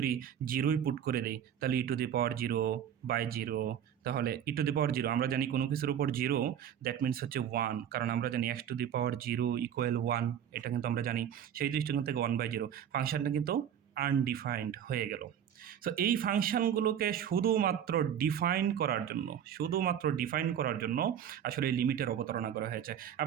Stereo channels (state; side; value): quieter; left; 9.4 dB